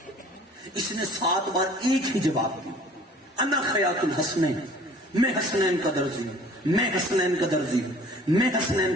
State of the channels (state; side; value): normal; both; correlation 0.50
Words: اس نے 7 بار ایک ہی جواب دیا، انا خیاط الحسنین، میں حسنین کا درزی ہوں، میں حسنین کا درزی ہوں، میں حسنین